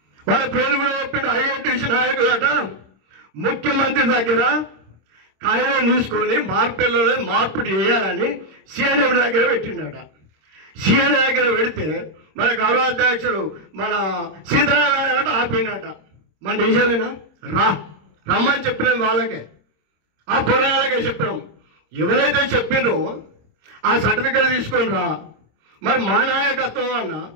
వాళ్ళ పేర్లు కూడా చెప్పిండు. ఐఐటీసీ నాయకులట ముఖ్యమంత్రి దగ్గర కాగితం తీసుకొని మార్పేర్లలో మార్పు చేయాలని సిఎండబ్ల్యూ దగ్గర పెట్టిండట. సిఎండబ్ల్యూ దగ్గర పెడితే మన గౌరవాధ్యక్షుడు మన సీతారామరాజు ఆపిండట. మన నిజమేనా? రమ్మని చెప్పినాం వాళ్ళకే, ఆ పోరాళ్ళకే చెప్పినాం. ఎవరైతే చెప్పినో ఆ సర్టిఫికేట్ తీసుకొని రా. మరి మా నాయకత్వం అన్న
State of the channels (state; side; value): late; left; 26 ms